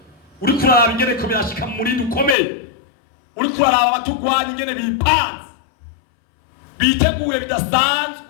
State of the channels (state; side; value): drops out; right; at 2.4 s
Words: Uri kuraba ingene ko byashika muri dukomeye. Uri kuraba abatugwanya ingene bipanze biteguye